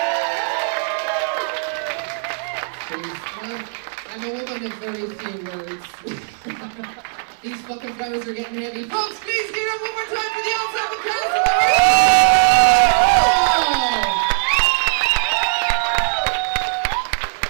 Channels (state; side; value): silent; left; 58 dB below the other